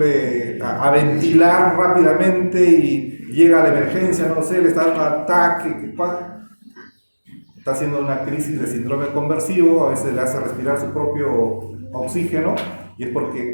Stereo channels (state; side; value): inverted; both; correlation -1.00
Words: a ventilar rápidamente y llega a la emergencia, no sé, le está dando un ataque, está haciendo una crisis de síndrome conversivo, a veces le hace respirar su propio oxígeno, y es